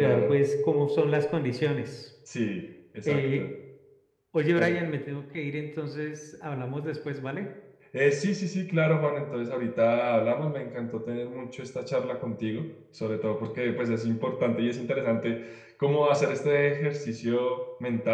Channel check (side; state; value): both; identical; correlation 1.00